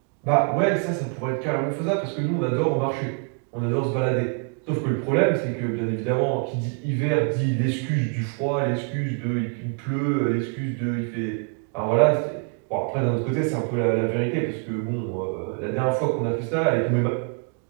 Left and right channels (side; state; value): left; quieter; 38.4 dB